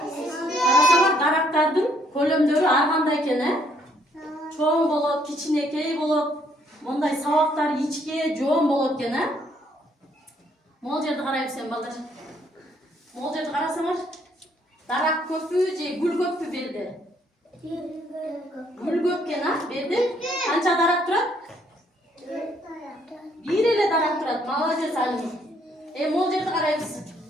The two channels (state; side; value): normal; both; correlation 0.68